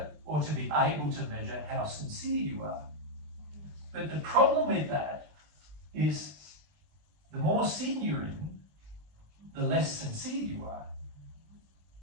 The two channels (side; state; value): left; late; 20 ms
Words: or to be able to measure, how sincere you are. But the problem with that is the more sin you're in, the less sincere you are.